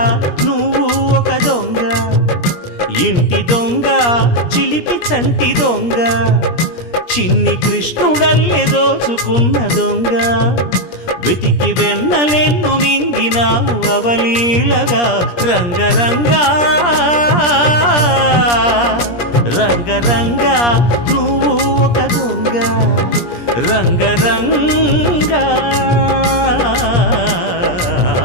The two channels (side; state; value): right; late; 17 ms